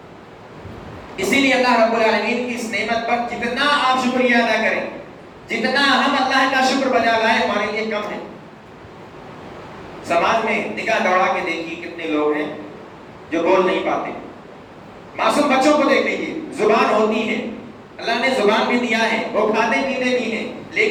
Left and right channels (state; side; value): identical; both; correlation 1.00